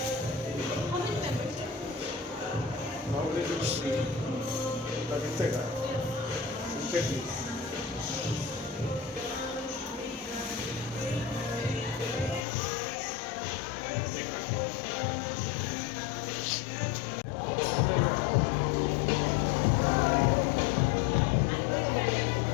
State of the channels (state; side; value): drops out; right; at 12.5 s